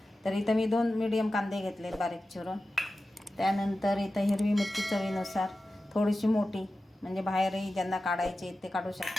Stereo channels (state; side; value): normal; both; correlation 0.94